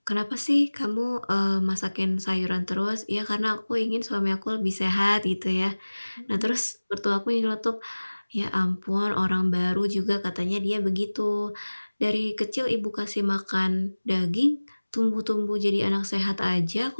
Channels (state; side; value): inverted; both; correlation -1.00